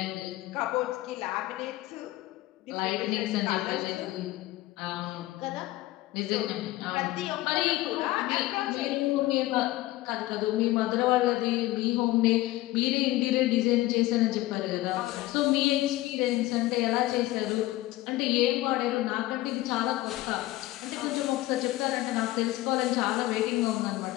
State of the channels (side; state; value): right; quieter; 17.4 dB